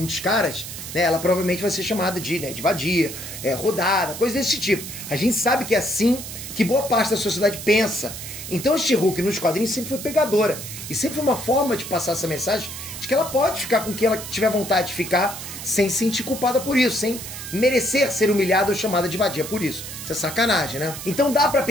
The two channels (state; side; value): noise; right; hiss, 9 dB below the sound